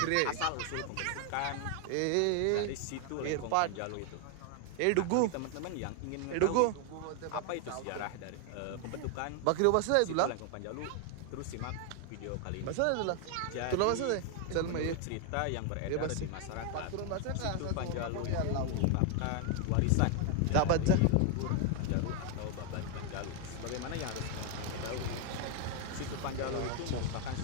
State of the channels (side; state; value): both; different; correlation 0.01